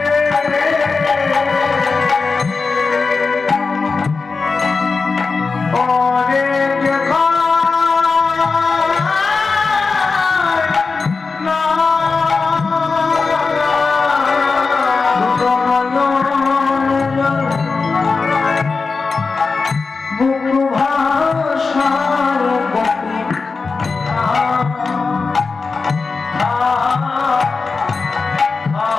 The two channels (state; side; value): quieter; right; 4.4 dB